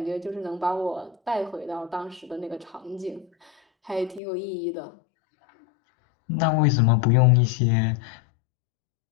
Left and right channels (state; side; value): drops out; right; at 4.2 s